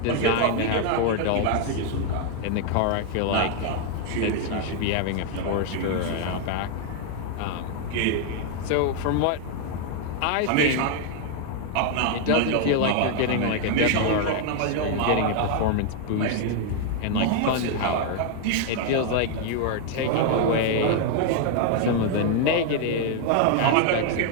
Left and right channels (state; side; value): different; both; correlation 0.00